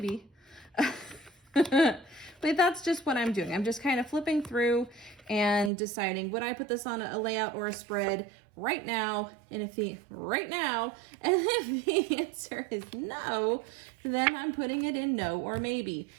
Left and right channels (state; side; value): drops out; left; at 5.7 s